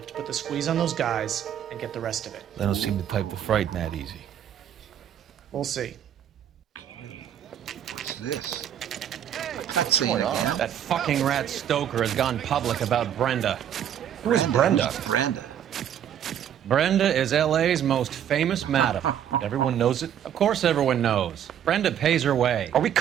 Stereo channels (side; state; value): left; quieter; 9.7 dB